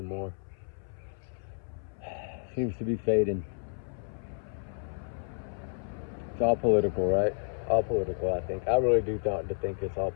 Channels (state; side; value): silent; right; 57 dB below the other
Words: Seems to be fading. It's all political, right? All political, I think. I really do think it's all